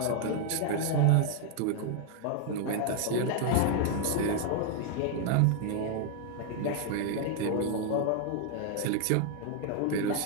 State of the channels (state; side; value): different; both; correlation 0.00